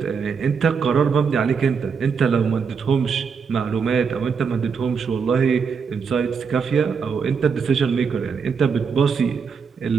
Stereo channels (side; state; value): left; quieter; 5.9 dB